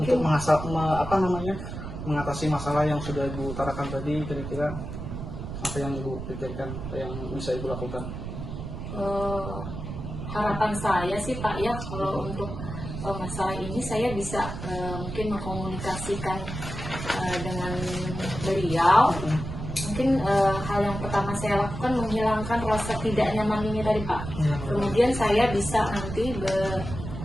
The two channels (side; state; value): right; noise; rumble, 7 dB below the sound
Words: mengatasi masalah yang sudah Ibu utarakan tadi, kira-kira apa yang Ibu pikirkan, yang bisa Ibu lakukan? Harapan saya sih Pak ya, kalau untuk masalah ini saya bisa mungkin mengkomunikasikan dengan beliau. Mungkin hal yang pertama saya lakukan menghilangkan rasa tidak nyaman ini tadi Pak. Kemudian saya bisa nanti